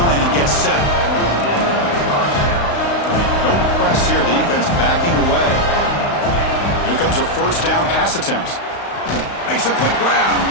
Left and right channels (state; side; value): late; right; 35 ms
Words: and get set. No press here. The defense backing away. Here comes a first down pass attempt. Makes a quick grab.